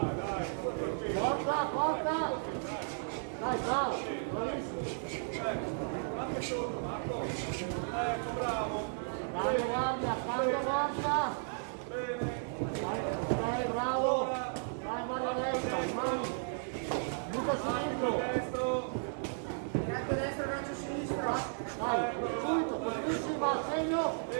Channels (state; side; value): silent; left; digital silence